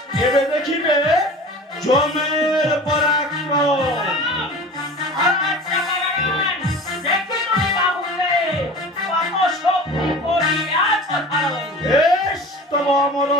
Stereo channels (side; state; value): both; normal; correlation 0.38